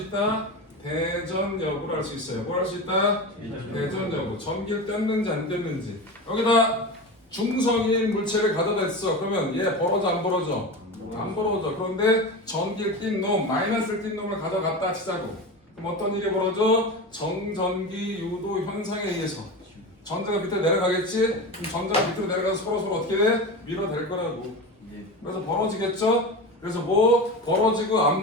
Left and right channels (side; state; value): both; normal; correlation 0.26